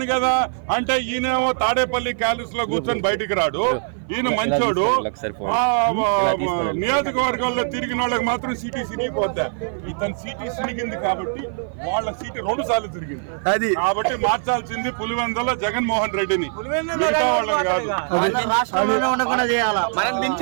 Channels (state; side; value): silent; left; 55 dB below the other